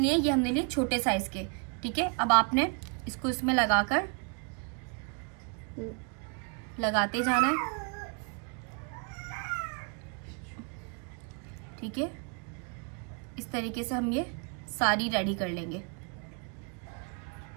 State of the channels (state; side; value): quieter; left; 37.5 dB